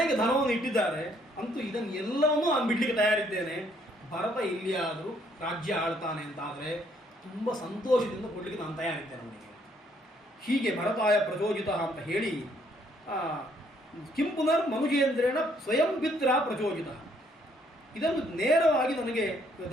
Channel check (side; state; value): both; normal; correlation 0.67